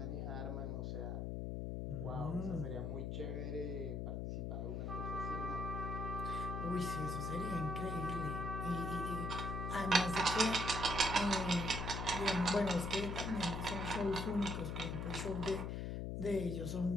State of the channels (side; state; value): left; noise; hum, 2 dB below the sound